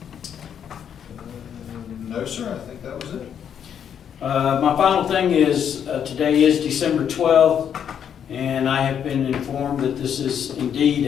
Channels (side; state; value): right; quieter; 8.5 dB